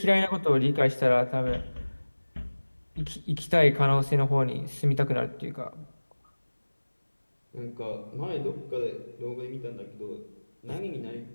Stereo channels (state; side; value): inverted; both; correlation -1.00